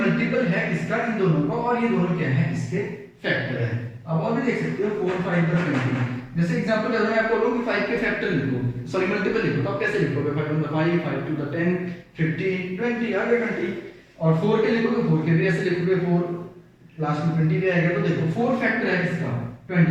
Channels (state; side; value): identical; both; correlation 1.00